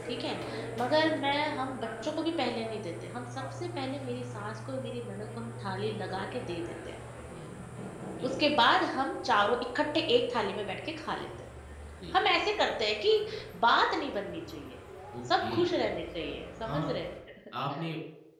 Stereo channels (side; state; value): both; identical; correlation 1.00